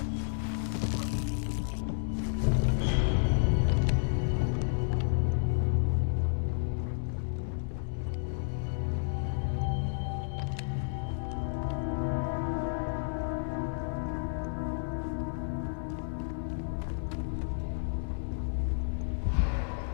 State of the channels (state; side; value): silent; right; digital silence